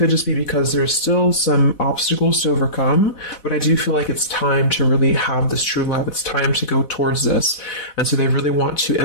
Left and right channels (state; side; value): late; right; 4.1 ms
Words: just be because there's still some obstacles to overcome. But I do feel like it's time to really have this true love. It's time to go towards this. And so they really want to